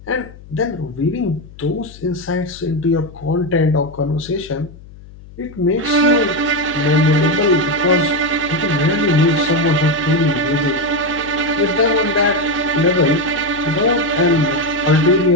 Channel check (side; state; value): left; noise; hum, 19 dB below the sound